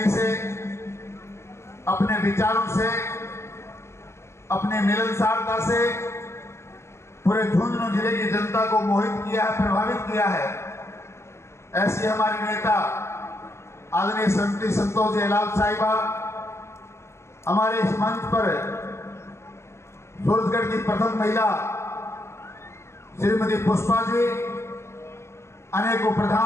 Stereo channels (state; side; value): late; right; 0.13 ms